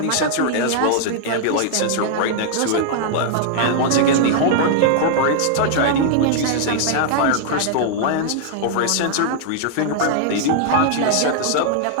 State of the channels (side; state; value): both; different; correlation -0.01